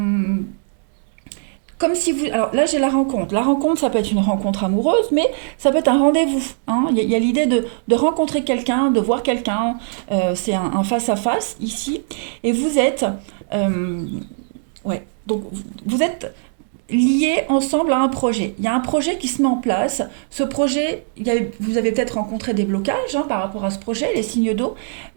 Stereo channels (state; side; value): silent; left; digital silence